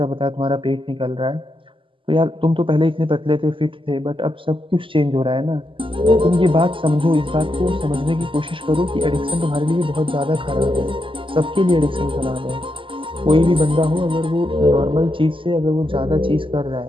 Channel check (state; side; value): late; left; 0.25 ms